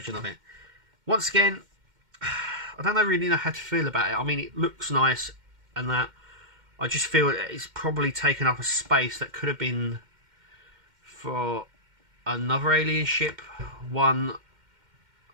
of it. Once again, I don't really know how to feel about it. I mean, it looks nice and that. I just feel it's probably taken up a space that could have been for another alien ship, one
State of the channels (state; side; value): late; left; 2.1 ms